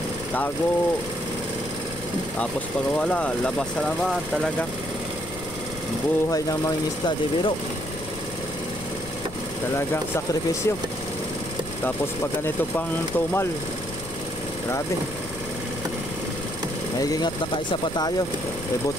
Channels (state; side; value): noise; left; rumble, 14 dB below the sound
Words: tago. Tapos pag wala, labas na naman. Talagang buhay ng mangingisda, di biro. Talagang sakripisyo. Tapos pag ganito pang tumal, grabe. Naigingat na kaisa pa tayo.